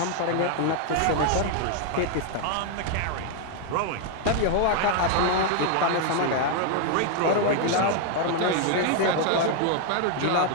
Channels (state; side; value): different; both; correlation 0.00